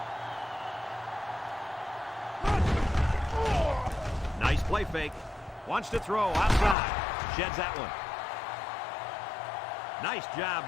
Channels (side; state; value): right; drops out; at 6.8 s